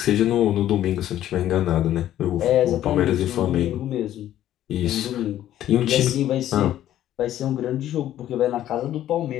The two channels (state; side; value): quieter; right; 12.3 dB